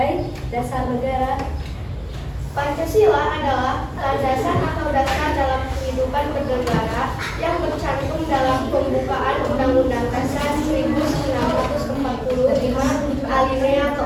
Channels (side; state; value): both; identical; correlation 1.00